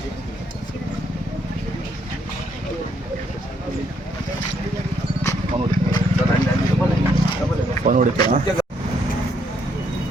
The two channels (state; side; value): normal; both; correlation 0.72